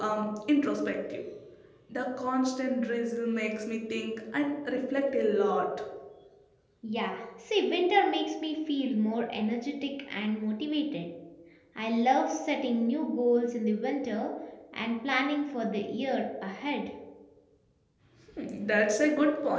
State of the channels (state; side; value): identical; both; correlation 1.00